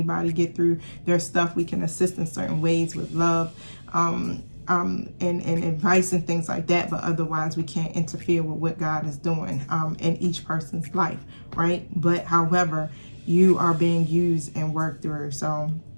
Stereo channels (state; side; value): inverted; both; correlation -1.00